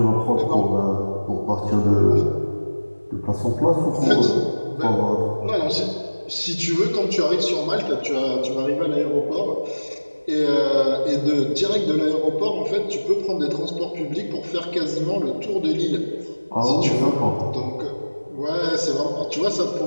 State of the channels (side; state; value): both; inverted; correlation -1.00